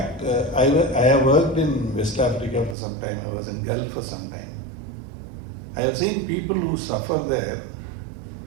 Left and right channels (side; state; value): left; drops out; at 2.8 s